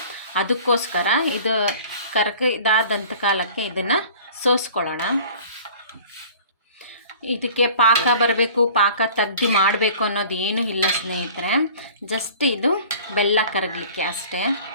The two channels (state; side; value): inverted; both; correlation -0.46